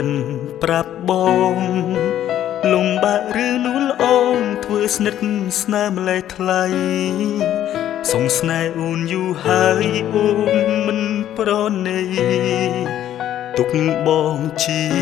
នប្រាប់បងលំបាកឬលួលអូនធ្វើស្និទ្ធស្នាមម្លេះថ្លៃសងស្នេហ៍អូនយូរហើយអូនមិនប្រណីទុកបងជា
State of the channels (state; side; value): quieter; right; 11.6 dB